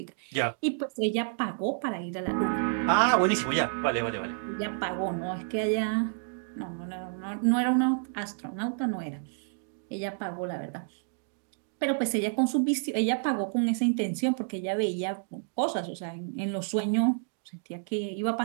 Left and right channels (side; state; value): left; silent; 58 dB below the other